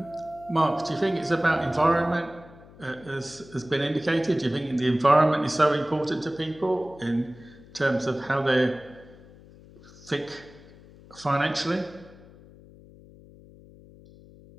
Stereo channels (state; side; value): noise; left; hum, 22 dB below the sound